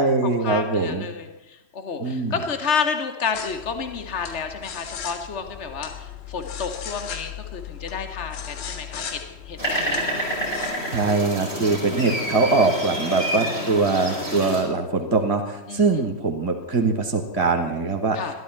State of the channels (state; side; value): late; right; 3.1 ms